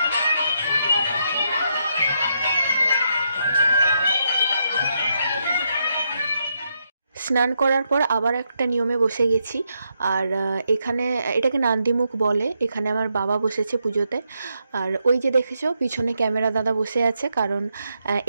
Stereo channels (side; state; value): both; inverted; correlation -0.80